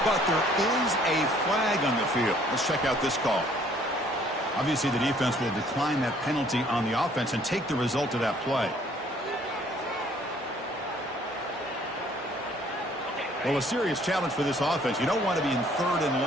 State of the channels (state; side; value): normal; both; correlation 0.60